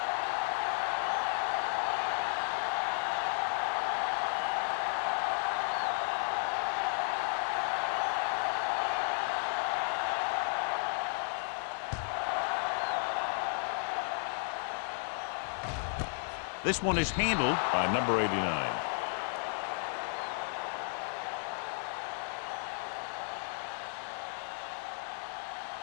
This one is handled by number 89.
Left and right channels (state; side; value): silent; right; 55 dB below the other